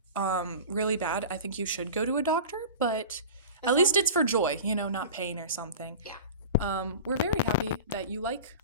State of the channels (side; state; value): both; inverted; correlation -0.35